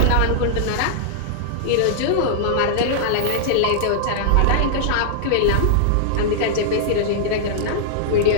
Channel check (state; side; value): different; both; correlation -0.01